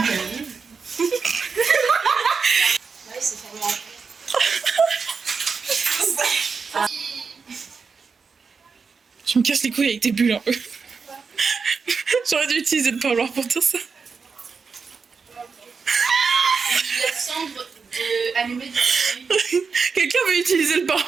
Tu me casses les couilles avec tes bulles un peu. J'aurais dû utiliser le parloir pour dire ça. La cendre de allumée de Quelqu'un veut utiliser le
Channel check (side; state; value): left; quieter; 5.3 dB